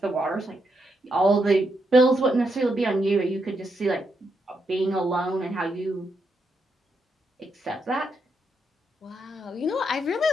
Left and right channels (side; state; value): both; normal; correlation 0.81